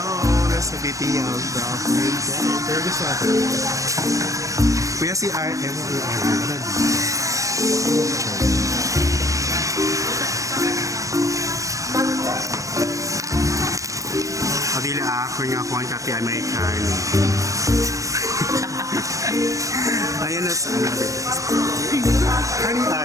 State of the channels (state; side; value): late; left; 0.16 ms